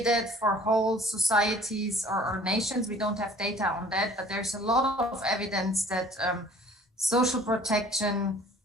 that for whole societies or nations. We don't have data on that, but there's a lot of evidence that social protection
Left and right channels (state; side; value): normal; both; correlation 0.52